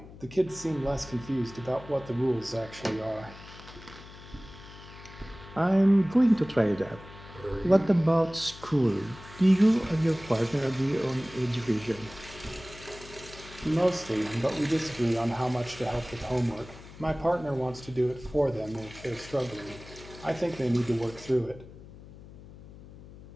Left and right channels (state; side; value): noise; left; hum, 17 dB below the sound